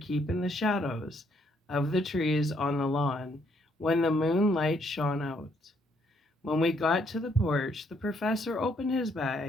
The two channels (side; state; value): both; normal; correlation 0.70